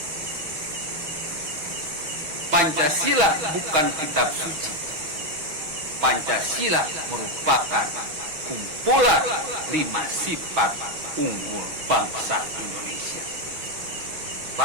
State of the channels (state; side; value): late; left; 6.2 ms